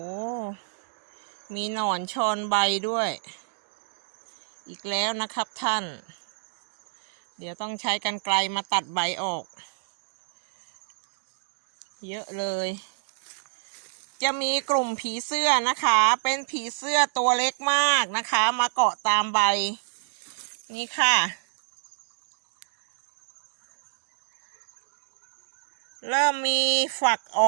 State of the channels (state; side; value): silent; left; digital silence